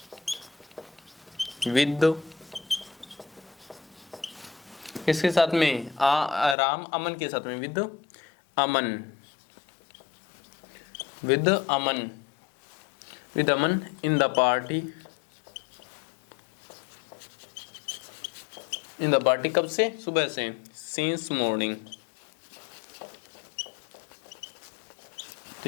with किसके साथ में? राम अमन के साथ में, with Aman in the party कब से? सुबह से, सिंस मॉर्निंग। तो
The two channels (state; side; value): drops out; right; at 6.6 s